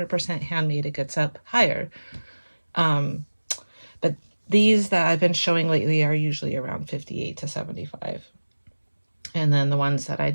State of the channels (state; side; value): inverted; both; correlation -1.00